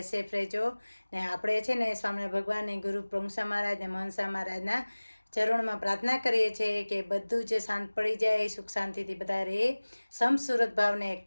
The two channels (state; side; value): inverted; both; correlation -1.00